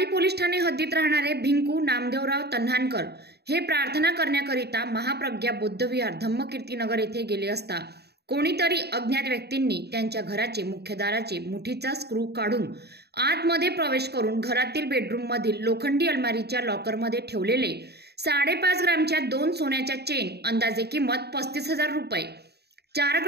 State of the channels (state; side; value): late; left; 0.48 ms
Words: पोलीस ठाणे हद्दीत राहणारे भिंकू नामदेवराव तन्हानकर हे प्रार्थना करण्याकरिता महाप्रज्ञा बुद्धविहार धम्मकीर्तीनगर येथे गेले असता कोणीतरी अज्ञात व्यक्तींनी त्यांच्या घराचे मुख्य दाराचे मुठीचा स्क्रू काढून आतमध्ये प्रवेश करून घरातील बेडरूम मधील लोखंडी अलमारीच्या लॉकरमध्ये ठेवलेले 5.5 ग्रामच्या 2 सोन्याच्या चेन अंदाजे किंमत 35,000 रुपये, 4